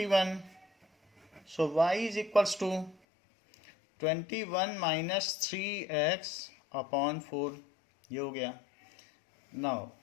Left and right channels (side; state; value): right; drops out; at 3.0 s